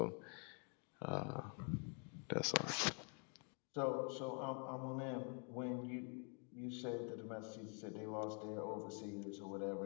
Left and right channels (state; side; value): quieter; right; 38.2 dB